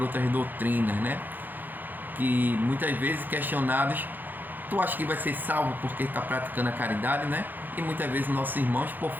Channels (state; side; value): late; left; 0.087 ms